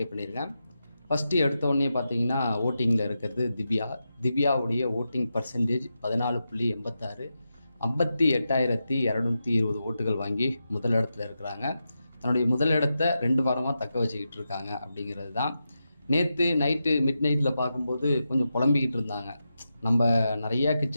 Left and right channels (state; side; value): inverted; both; correlation -0.89